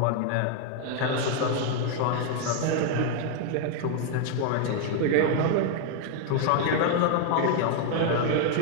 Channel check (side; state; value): both; different; correlation 0.00